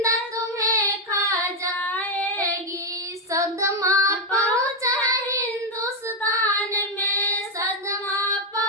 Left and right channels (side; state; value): both; normal; correlation 0.03